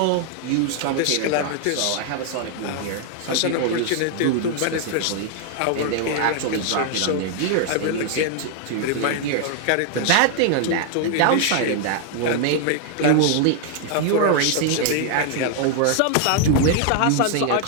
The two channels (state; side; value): different; both; correlation 0.00